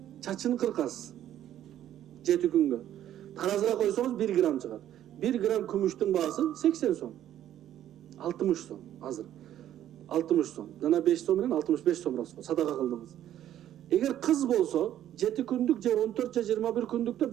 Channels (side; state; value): left; quieter; 11.6 dB